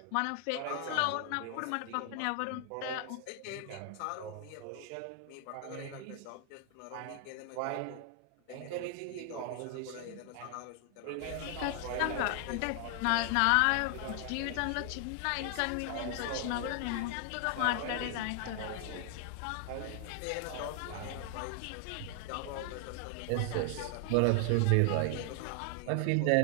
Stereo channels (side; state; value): both; different; correlation 0.00